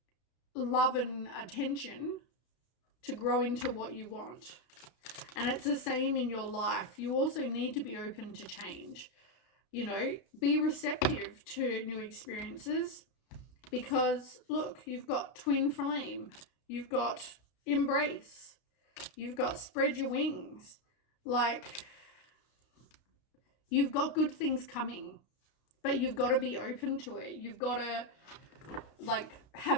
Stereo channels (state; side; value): late; right; 32 ms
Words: love and attention to grow into what you want. And it's the same in your life. You also need to be open to change. Be receptive to new experiences, because look, you've got twin flame, you've got embrace, you've got spread your wings. Like, you've got good things coming, but you've got to be open to it. You've got to like